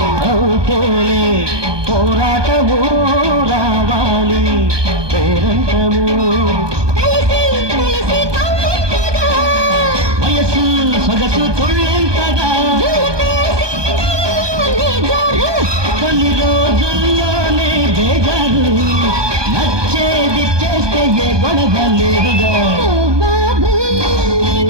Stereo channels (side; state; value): left; late; 1.2 ms